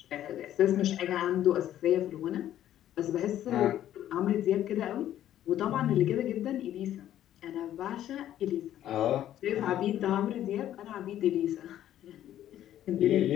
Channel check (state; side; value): quieter; right; 11.9 dB